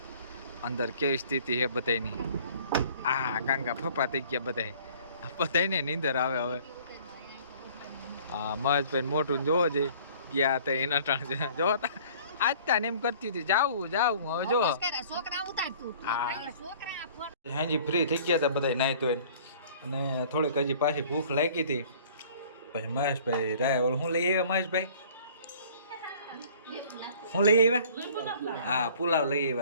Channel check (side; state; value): both; inverted; correlation -0.52